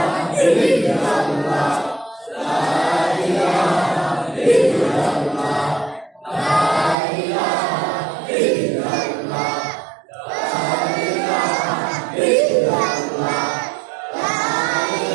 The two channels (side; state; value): left; drops out; at 7.0 s